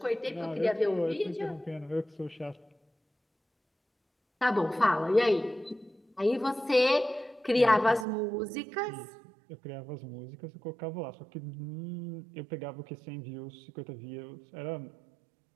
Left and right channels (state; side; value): drops out; left; at 8.1 s